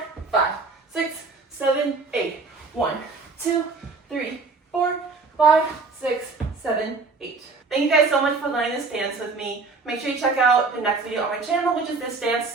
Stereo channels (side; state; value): left; quieter; 4.1 dB